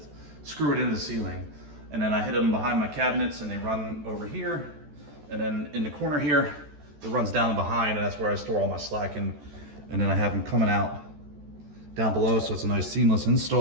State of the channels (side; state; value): left; late; 14 ms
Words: screw it into the ceiling. And then I hit them behind my cabinets and they run over here. And then in the corner here, it runs down behind, and that's where I store all my slack. And then I have them coming out down below, so it's a nice seamless